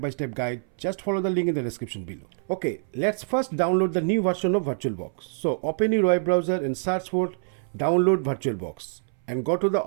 guide. Just follow the link in the description below. Okay, let's first download the new version of VirtualBox. So open your web browser and search for download VirtualBox and go to the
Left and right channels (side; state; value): left; silent; 61 dB below the other